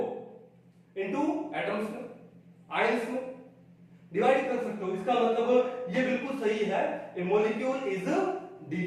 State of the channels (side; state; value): both; identical; correlation 1.00